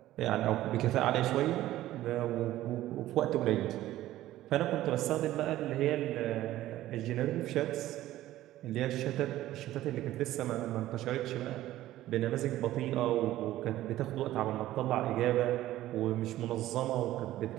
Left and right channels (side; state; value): left; quieter; 14.7 dB